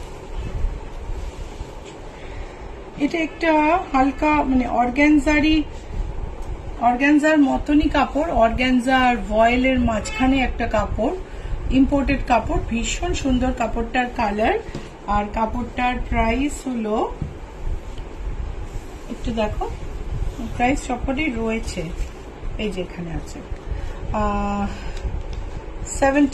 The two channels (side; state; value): both; identical; correlation 1.00